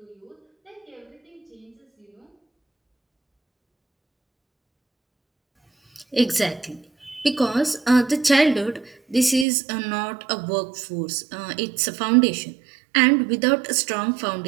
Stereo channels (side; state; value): left; drops out; at 9.5 s